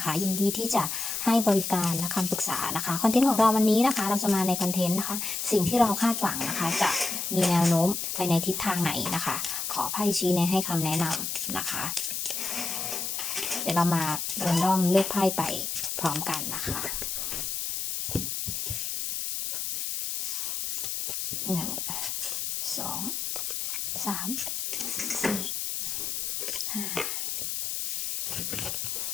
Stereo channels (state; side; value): noise; left; hiss, 2 dB below the sound